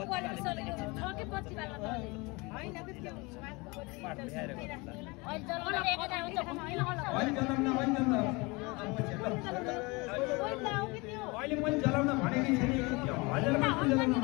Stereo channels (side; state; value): right; quieter; 26.0 dB